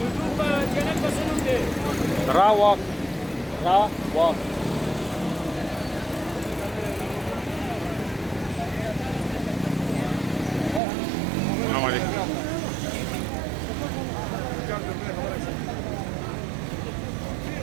चैनल का सुन दे। रा वॉक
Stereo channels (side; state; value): left; drops out; at 10.8 s